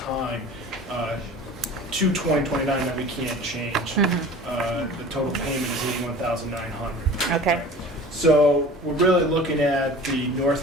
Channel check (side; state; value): both; normal; correlation 0.41